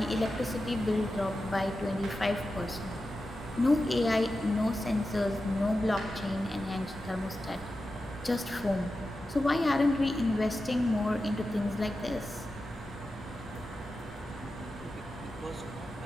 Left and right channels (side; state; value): both; normal; correlation 0.91